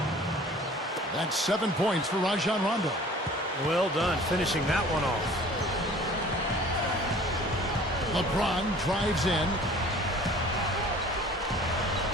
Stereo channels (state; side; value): normal; both; correlation 0.48